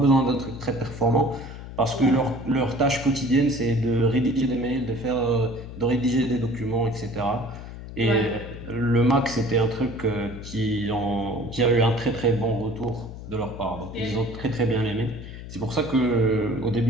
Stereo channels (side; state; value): left; noise; hum, 12 dB below the sound